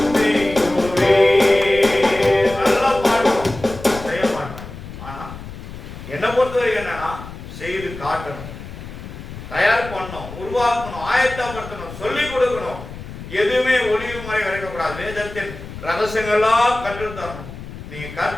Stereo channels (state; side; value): noise; left; rumble, 12 dB below the sound